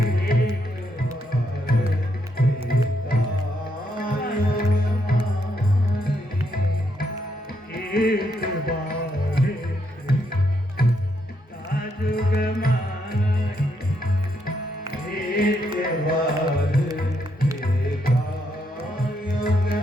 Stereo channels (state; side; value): normal; both; correlation 0.77